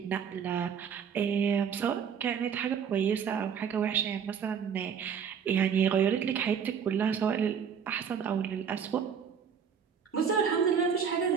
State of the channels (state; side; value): quieter; left; 7.2 dB